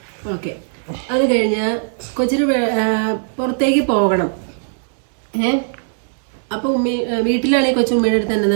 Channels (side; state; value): left; silent; digital silence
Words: ഓക്കെ. അത് കഴിഞ്ഞ് കൊച്ചിന് പുറത്തേക്ക് പോകണം. അപ്പൊ വീട്ടിലാണെങ്കിൽ കൊച്ചു ഉമ്മയുടെ അടുത്ത് എന്നാ